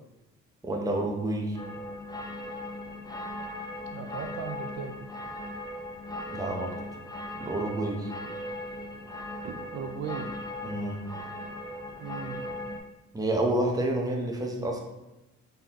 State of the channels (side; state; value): both; normal; correlation 0.46